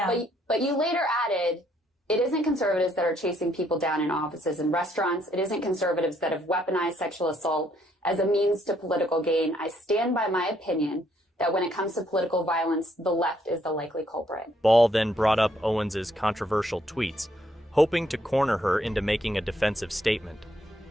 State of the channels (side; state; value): both; normal; correlation 0.70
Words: But you later added, it isn't conservatives that are chasing people down in offices and restaurants. It isn't conservatives that have weaponized sexual assault as a means to political gain. I stand by my opinion that when it comes to political violence, the left is the likely culprit. Ball then brought up Owens's controversial tweets, hoping to corner her into making a defensive statement.